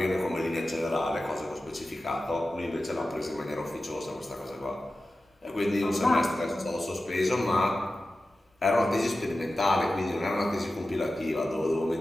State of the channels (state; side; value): normal; both; correlation 0.94